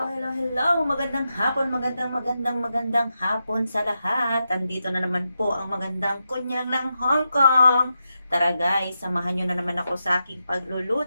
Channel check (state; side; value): inverted; both; correlation -0.87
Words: Magandang hapon sa lahat. Andito na naman po ang magandang kunyang ng Hong Kong. Tara guys, samahan nyo na naman ako sa aking